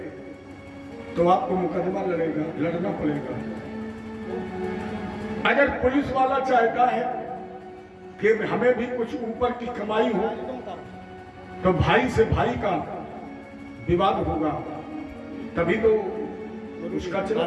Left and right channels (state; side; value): identical; both; correlation 1.00